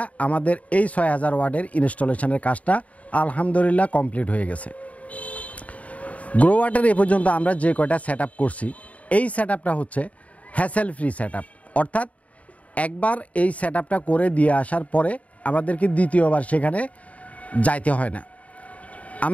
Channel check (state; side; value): late; right; 0.068 ms